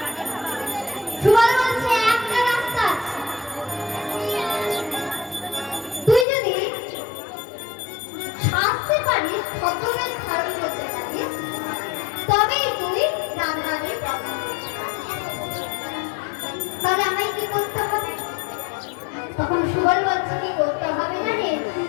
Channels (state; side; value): drops out; right; at 6.2 s